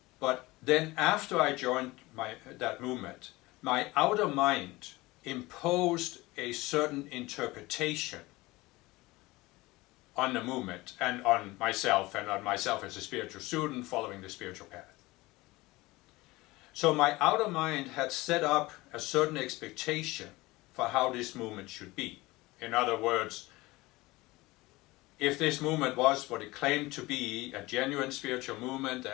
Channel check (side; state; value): right; quieter; 20.7 dB